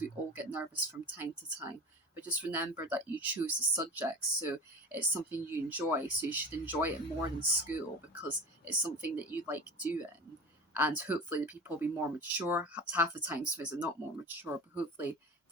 We all get nervous from time to time, but just remember that you chose the subject, so it's something you enjoy, so you should enjoy it more than school because it's something that you like doing. And hopefully the people will be more mature. Half the time sometimes they're not more mature, but hopefully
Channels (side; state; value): both; normal; correlation 0.32